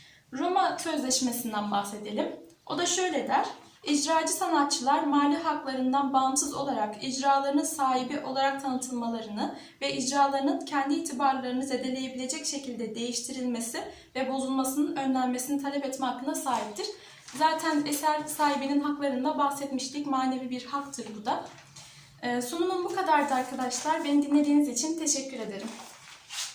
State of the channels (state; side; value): identical; both; correlation 1.00